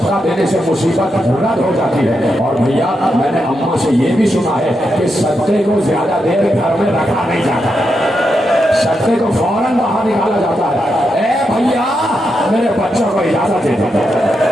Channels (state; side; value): normal; both; correlation 0.84